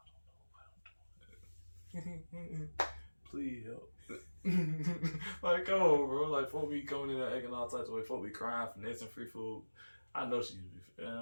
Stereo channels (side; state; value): both; inverted; correlation -1.00